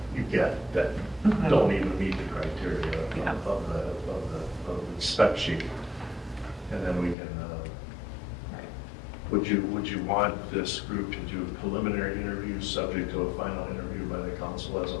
you get that don't even meet the criteria of the spec sheet, and then we can. Would you want this group to do preliminary interviews subject to a final interview by the council as a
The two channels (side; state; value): right; drops out; at 7.2 s